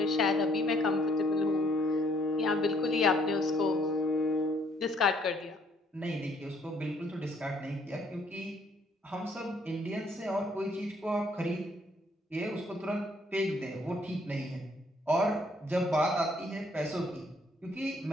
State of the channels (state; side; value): normal; both; correlation 0.66